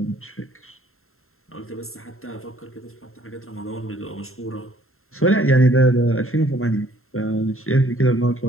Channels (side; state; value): right; late; 0.62 ms